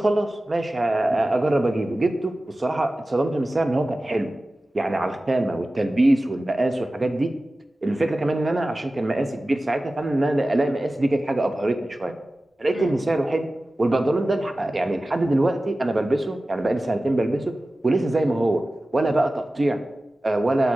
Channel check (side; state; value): both; normal; correlation 0.96